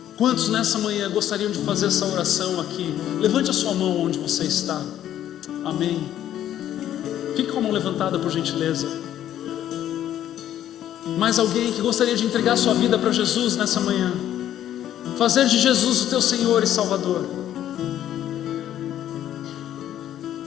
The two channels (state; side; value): quieter; right; 11.5 dB